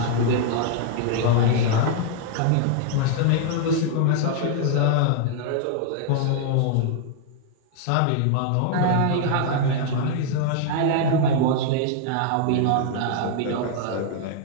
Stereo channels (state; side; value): different; both; correlation 0.00